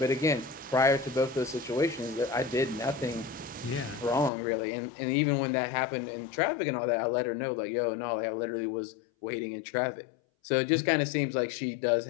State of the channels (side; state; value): right; drops out; at 4.3 s